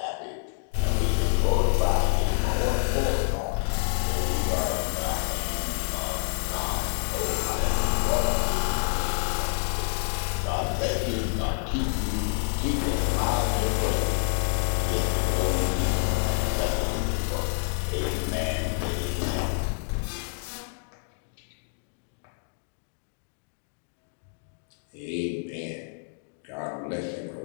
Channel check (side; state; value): right; silent; digital silence